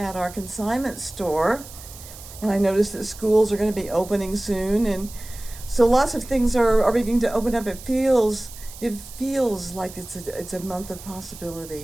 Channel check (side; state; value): right; noise; hiss, 16 dB below the sound